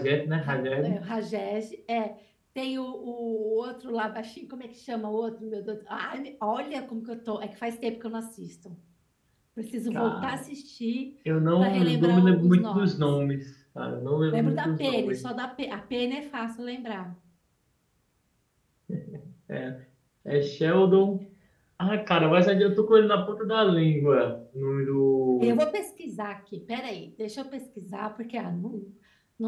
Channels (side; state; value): both; identical; correlation 1.00